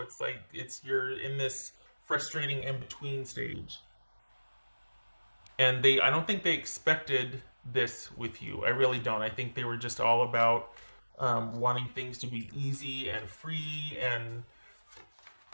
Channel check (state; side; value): inverted; both; correlation -1.00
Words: like you're in this frustrating in-between stage. And I don't think they expected this with you. I really don't. I think they were just all about wanting things to be easy and free and